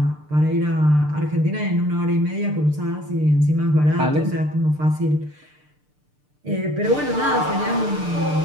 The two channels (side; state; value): left; late; 6.7 ms